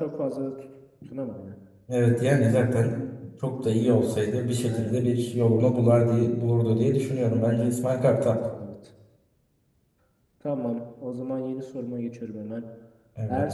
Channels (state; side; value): identical; both; correlation 1.00